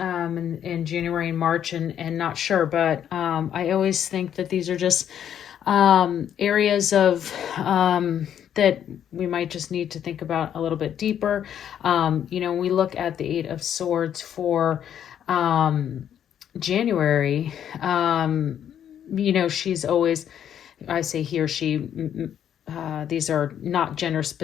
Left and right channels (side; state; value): right; quieter; 9.6 dB